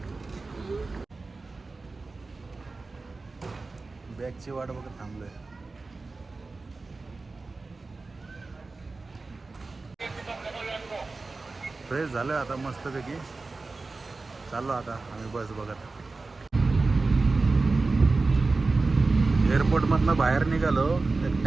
बॅगची वाट बघत थांबलोय. फ्रेश झालं आता मस्तपैकी. चाललो आता आम्ही बस बघत. एअरपोर्टमधनं बाहेर निघालो, एक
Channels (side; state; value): left; quieter; 3.7 dB